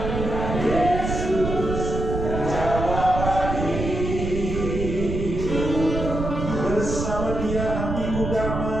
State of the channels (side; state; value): right; noise; rumble, 4 dB below the sound